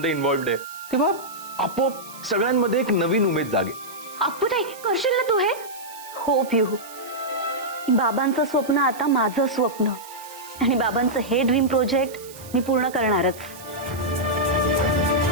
इन्व्हॉल्व्ड आहे, तेव्हा आपोआप सगळ्यांमध्ये एक नवीन उमेद जागेल. अप्पूताई, करशील ना तू हे? हो पिहू, बाबांचं स्वप्न आता माझं स्वप्न आणि बाबांचं हे ड्रीम प्रोजेक्ट मी पूर्ण करणारच.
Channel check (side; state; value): right; noise; hiss, 18 dB below the sound